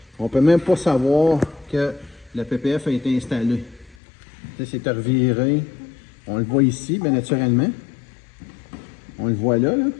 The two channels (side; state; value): right; drops out; at 4.0 s